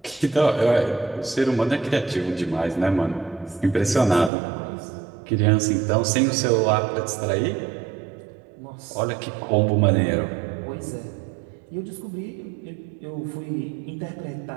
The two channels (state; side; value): drops out; left; at 4.3 s